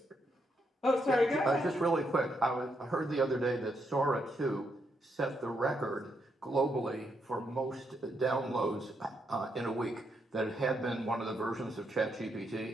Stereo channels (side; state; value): both; normal; correlation 0.79